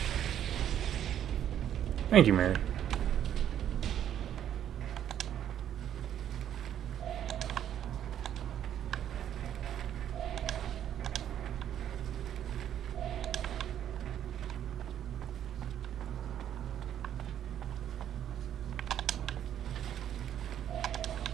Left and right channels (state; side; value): quieter; left; 10.3 dB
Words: Thank you, Mary.